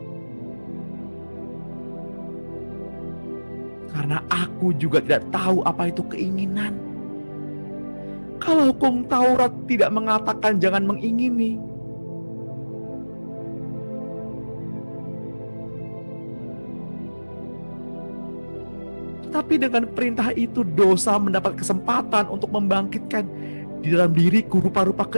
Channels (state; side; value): inverted; both; correlation -1.00